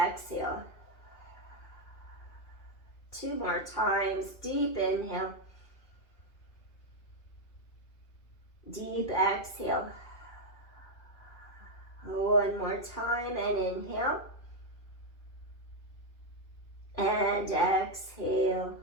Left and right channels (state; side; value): late; right; 2.5 ms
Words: 2 more times. Deep inhale. Deep exhale. 1 more time and inhale. And exhale.